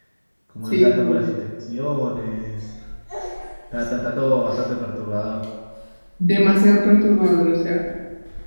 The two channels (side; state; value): both; inverted; correlation -1.00